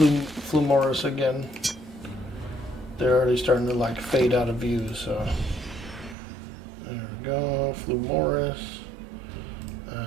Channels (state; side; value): drops out; left; at 6.2 s